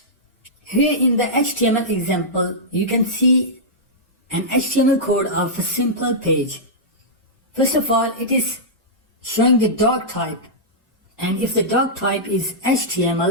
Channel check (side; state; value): both; normal; correlation -0.12